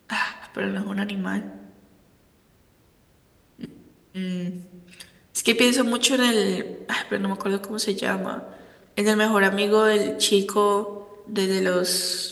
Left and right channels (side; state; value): both; identical; correlation 1.00